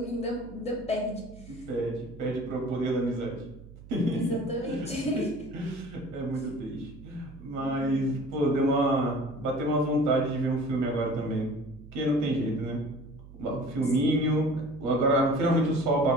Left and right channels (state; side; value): noise; right; hum, 18 dB below the sound